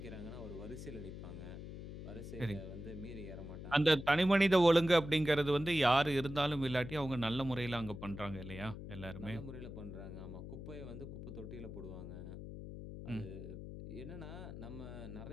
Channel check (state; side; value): noise; left; hum, 10 dB below the sound